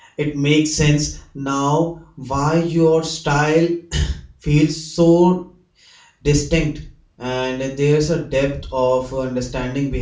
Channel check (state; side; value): identical; both; correlation 1.00